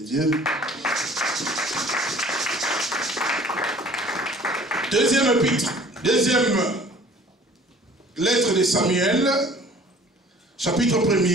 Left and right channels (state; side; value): normal; both; correlation 0.51